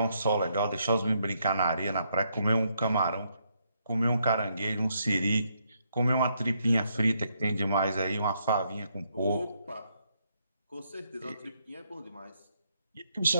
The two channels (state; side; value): inverted; both; correlation -0.75